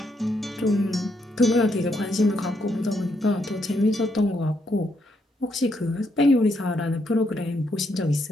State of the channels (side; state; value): both; normal; correlation 0.76